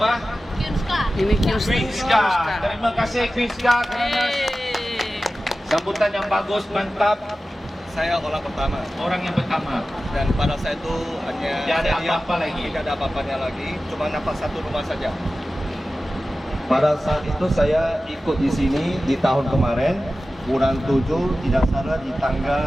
Kyunska. Ini Queenska. Terima kasih Queenska karena sambutan yang bagus, mantap. Saya orang pertama Orang yang pertama. dan pada saya itu hanya Tidak ada saya lihat apa-apa lagi. tidak ada apa-apanya lagi, cuma nampak satu rumah saja. Pada saat itu saya ikut di sini di tahun kemarin bulan 7 tidak salah di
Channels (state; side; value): normal; both; correlation 0.95